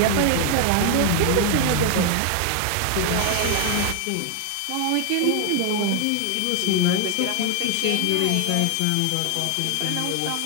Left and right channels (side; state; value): both; different; correlation 0.00